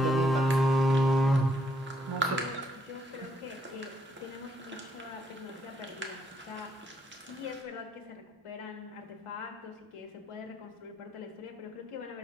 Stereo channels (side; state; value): both; normal; correlation 0.73